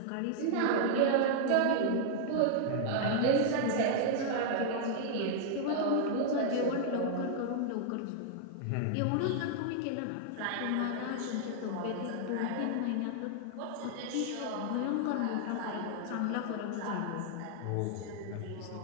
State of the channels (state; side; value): different; both; correlation -0.01